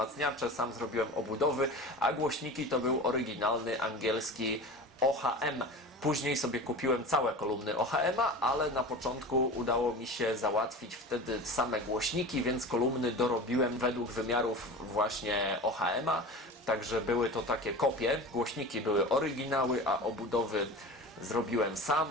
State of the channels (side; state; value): both; normal; correlation 0.33